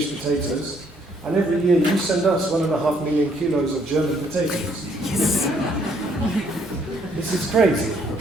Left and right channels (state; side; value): normal; both; correlation 0.67